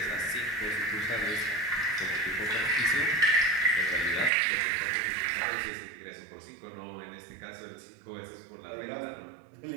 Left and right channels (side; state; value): left; drops out; at 4.3 s